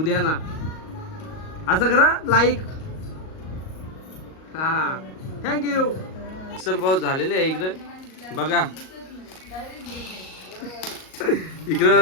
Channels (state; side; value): late; right; 38 ms